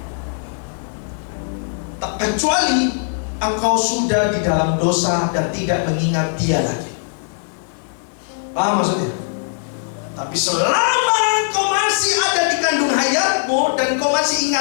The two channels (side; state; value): right; silent; digital silence